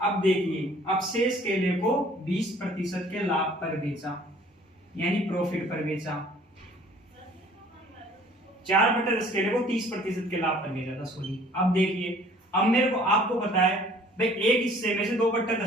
देखिए, अब शेष केले को 20% के लाभ पर बेचा यानी प्रॉफिट पर बेचा। 4/10 केले को 30% के लाभ पर बेचा था, सॉरी। अब देखिए, अब मेरे को आपको पता है भाई, एक हिस्से में से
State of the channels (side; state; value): both; normal; correlation 0.54